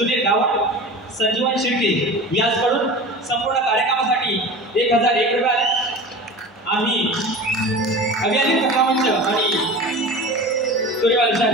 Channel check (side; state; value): both; normal; correlation 0.34